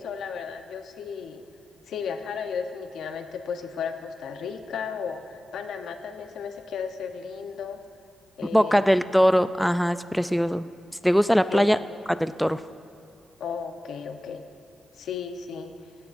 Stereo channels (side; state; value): both; normal; correlation 0.95